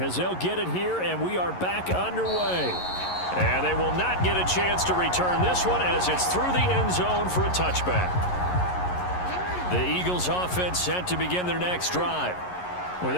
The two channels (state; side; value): late; right; 11 ms